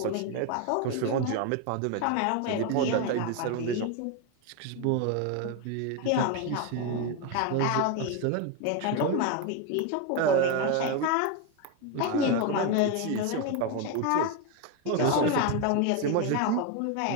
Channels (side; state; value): both; different; correlation 0.02